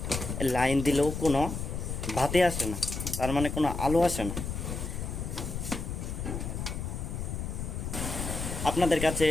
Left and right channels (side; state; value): left; noise; rumble, 4 dB below the sound